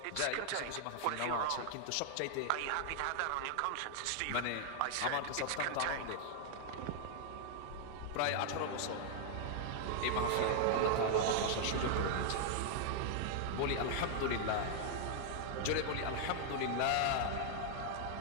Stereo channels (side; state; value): both; different; correlation 0.00